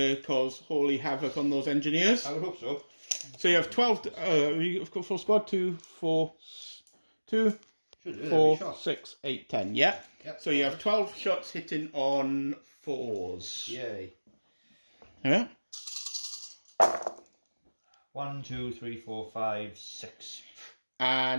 cause holy havoc on those engineers? I would hope so. So you have 12, you've got full squad, 2, 4, 2, Should do. 4, Shot. 6, 8, 10, yeah? Yep. So you have 12 shots hitting on 4s. Yay. Yeah? 1, 2, 3, 4, 5, 6.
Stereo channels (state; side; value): inverted; both; correlation -1.00